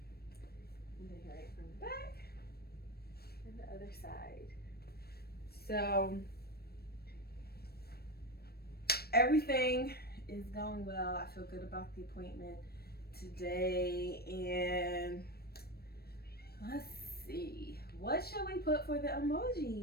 then right from the back and the other side. So everything is going well. I feel good about the appointment today. And let's see. What should we put for the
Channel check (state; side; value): late; right; 0.46 ms